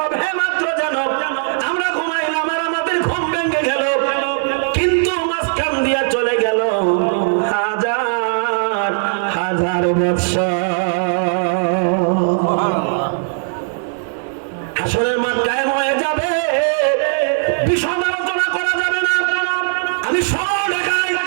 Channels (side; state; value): left; silent; digital silence